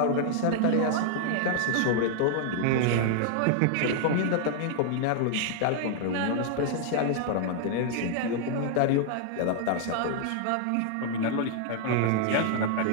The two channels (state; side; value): different; both; correlation 0.00